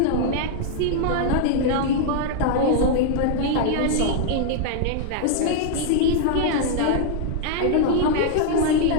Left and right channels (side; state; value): both; different; correlation -0.01